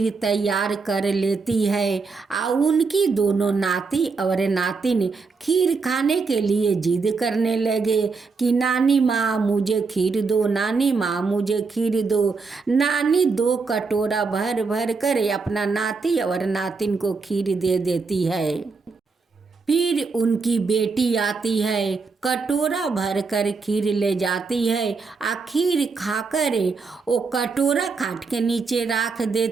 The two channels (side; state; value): left; quieter; 4.6 dB